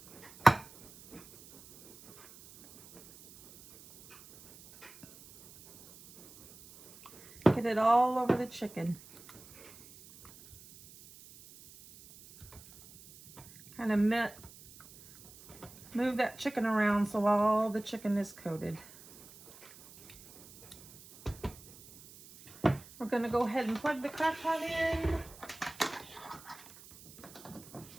Get it all over the chicken. Kind of move that chicken around so all the chicken is coated. We're going to go ahead and plug the crock pot in.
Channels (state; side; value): noise; right; hiss, 21 dB below the sound